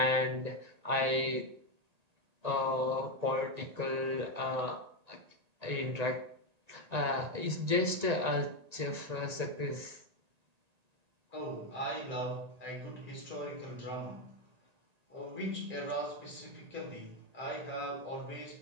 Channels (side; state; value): left; late; 1.9 ms